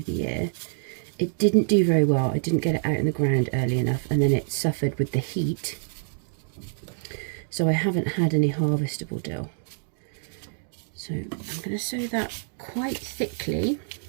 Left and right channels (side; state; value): left; silent; 61 dB below the other